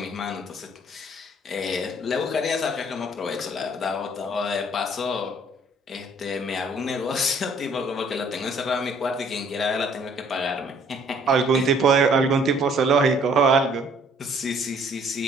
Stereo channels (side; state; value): both; normal; correlation 0.60